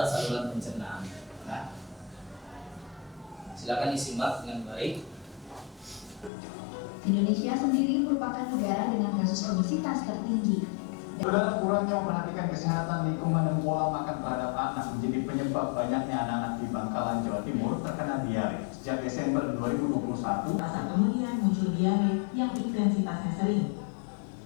saluran pencernaan. Nah, silakan disimak dengan baik. Indonesia sendiri merupakan negara dengan kasus obesitas tertinggi. Saudara, kurangnya memperhatikan kesehatan lingkungan dan pola makan terhadap anak menjadi penyebab banyaknya anak-anak di Bangkalan, Jawa Timur terkena diare. Sejak Desember 2021, saat kemudian muncul diare yang intensitasnya sering.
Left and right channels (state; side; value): drops out; right; at 6.3 s